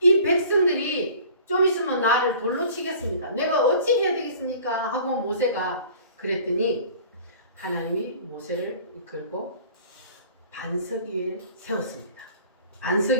백성들이 좀 있으면 나를 돌로 치겠습니다. 내가 어찌 해야 되겠습니까? 하고 모세가 그랬더니 하나님이 모세를 이끌고 반석 위에 세웠습니다. 반석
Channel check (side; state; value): both; inverted; correlation -0.47